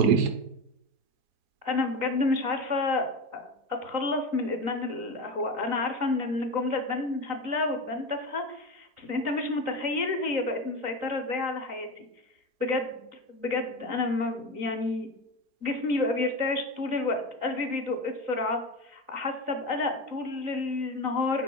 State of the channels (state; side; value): late; left; 3.9 ms